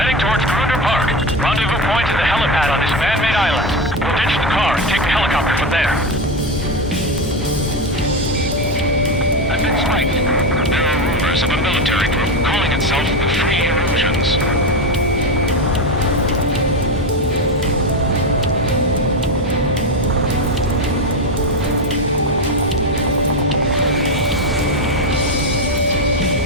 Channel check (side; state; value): both; normal; correlation 0.15